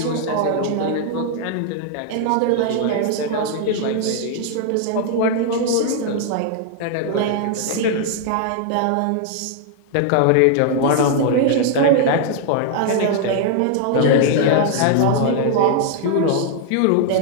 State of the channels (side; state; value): both; different; correlation 0.00